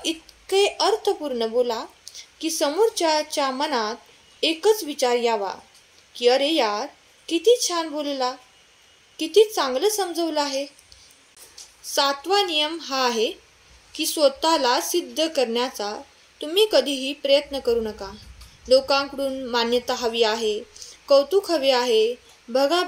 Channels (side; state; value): both; identical; correlation 1.00